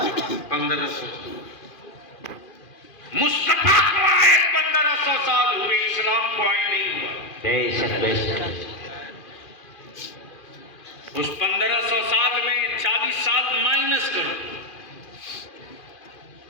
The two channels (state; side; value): late; right; 2.4 ms